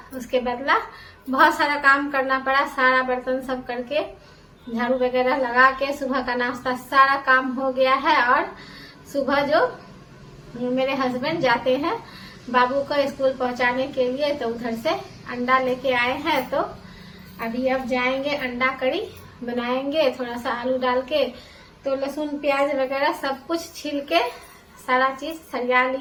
उसके बदला बहुत सारा काम करना पड़ा। सारा बर्तन सब करके झाड़ू वगैरह लगा के सुबह का नाश्ता सारा काम हो गया है। और सुबह जो मेरे हस्बैंड जाते हैं बाबू को स्कूल पहुंचाने के लिए, तो उधर से अंडा लेके आए हैं। तो अभी अब जाएंगे, अंडा करी बनाएंगे थोड़ा सा आलू डाल के। तो लहसुन प्याज वगैरह सब कुछ छील के सारा चीज सरिया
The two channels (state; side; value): identical; both; correlation 1.00